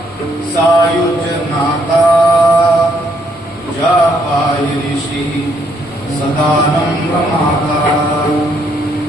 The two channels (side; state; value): both; normal; correlation 0.71